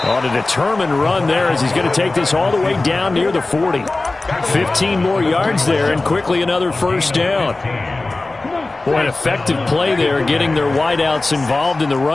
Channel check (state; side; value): quieter; right; 3.2 dB